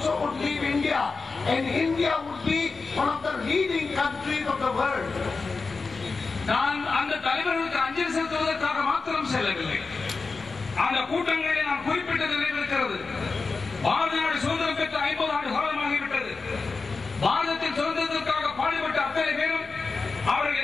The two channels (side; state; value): right; quieter; 4.3 dB